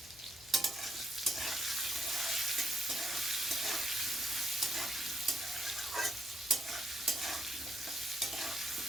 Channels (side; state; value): left; noise; hum, 24 dB below the sound